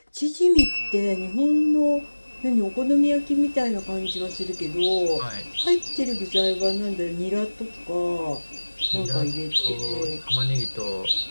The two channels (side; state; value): both; inverted; correlation -1.00